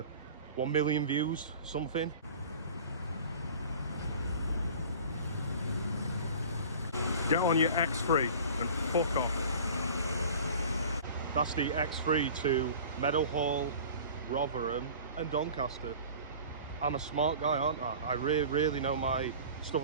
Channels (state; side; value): inverted; both; correlation -0.42